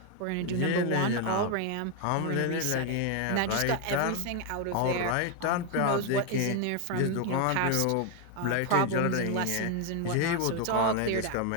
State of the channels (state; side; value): different; both; correlation 0.01